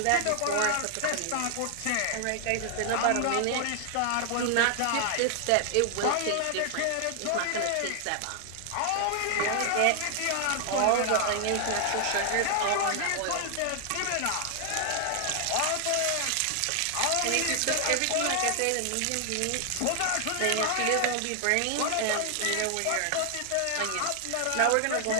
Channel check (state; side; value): different; both; correlation 0.00